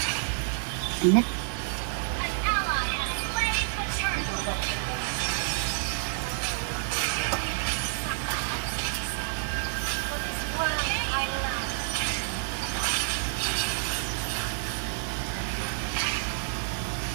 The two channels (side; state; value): left; silent; digital silence